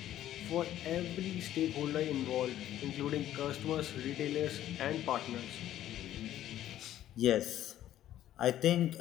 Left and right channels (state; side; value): quieter; right; 12.5 dB